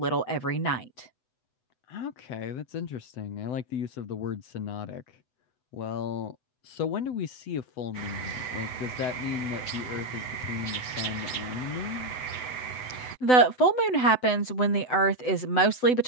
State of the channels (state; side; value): late; right; 7.9 ms